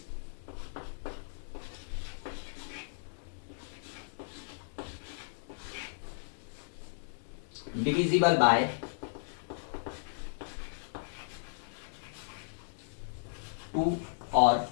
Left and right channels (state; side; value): silent; right; digital silence